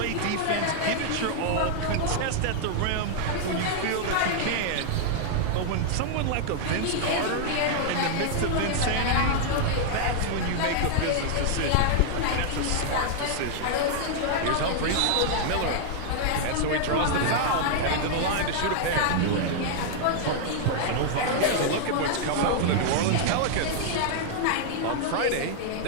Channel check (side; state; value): both; different; correlation -0.01